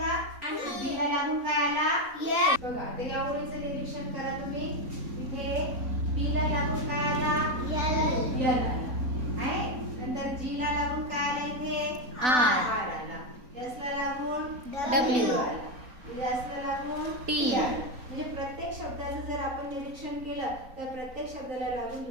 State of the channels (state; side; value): late; left; 3.9 ms